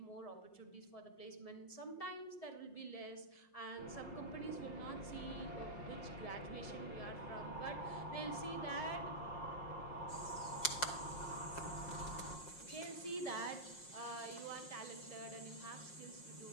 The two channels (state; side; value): late; right; 5.6 ms